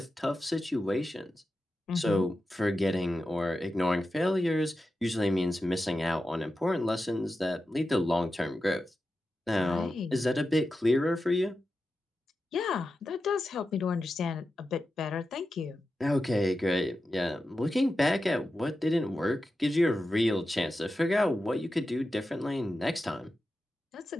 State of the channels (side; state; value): both; normal; correlation 0.91